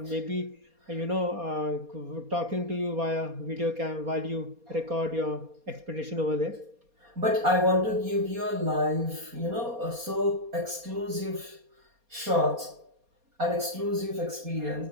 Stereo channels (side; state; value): left; late; 4.2 ms